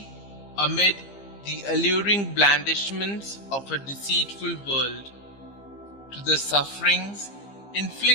amid the alluring blandishments of a deceitful world. To the sufferings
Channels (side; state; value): right; late; 15 ms